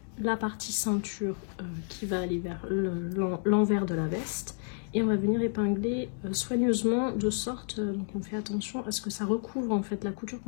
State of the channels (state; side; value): silent; right; 56 dB below the other